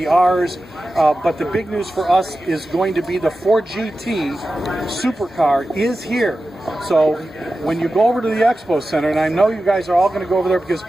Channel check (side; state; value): both; normal; correlation 0.93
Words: but the big news for us is going to be the Ford GT supercar is here. So when you go over to the Expo Center, and I know you guys are all going to go over there because